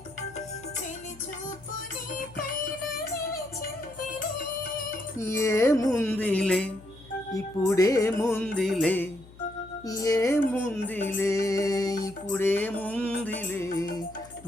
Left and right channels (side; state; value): left; noise; hum, 21 dB below the sound